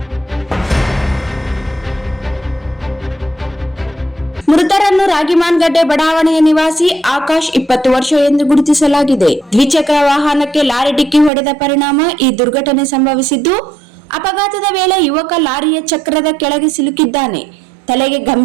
ಮೃತರನ್ನು ರಾಗಿಮಾನ್ಗಡ್ಡೆ ಬಡಾವಣೆಯ ನಿವಾಸಿ ಆಕಾಶ್ 20 ವರ್ಷ ಎಂದು ಗುರುತಿಸಲಾಗಿದೆ. ದ್ವಿಚಕ್ರ ವಾಹನಕ್ಕೆ ಲಾರಿ ಡಿಕ್ಕಿ ಹೊಡೆದ ಪರಿಣಾಮ ಈ ದುರ್ಘಟನೆ ಸಂಭವಿಸಿದ್ದು, ಅಪಘಾತದ ವೇಳೆ ಯುವಕ ಲಾರಿಯ ಚಕ್ರದ ಕೆಳಗೆ ಸಿಲುಕಿದ್ದಾನೆ. ತಲೆಗೆ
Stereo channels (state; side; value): drops out; left; at 11.3 s